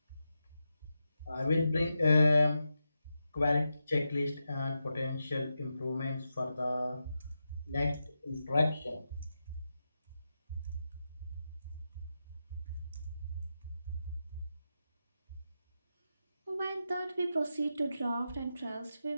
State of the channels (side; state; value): both; inverted; correlation -0.88